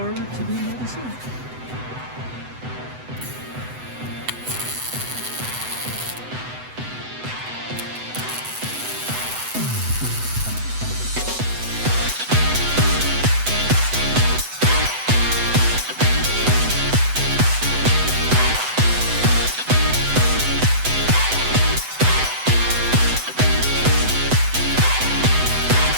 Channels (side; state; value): left; late; 8.0 ms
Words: to the other side.